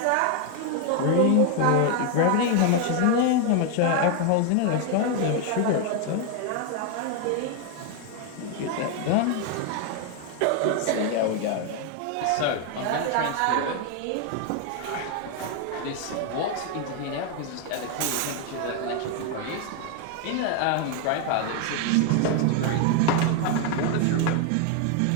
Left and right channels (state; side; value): different; both; correlation 0.01